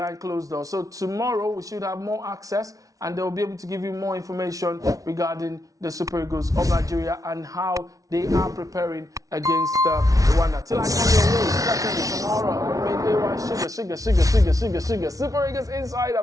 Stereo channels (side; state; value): left; late; 0.17 ms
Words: closed doors. So tomorrow we should have more access, and they'll be able to give you more information regarding the Super Eagles of Nigeria and how they are preparing against Rwanda. Till I come your way, certainly tomorrow, I remain AY Sugar, Super Eagles Insider,